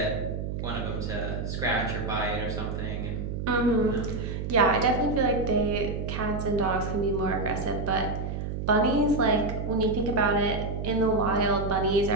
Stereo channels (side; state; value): right; noise; hum, 4 dB below the sound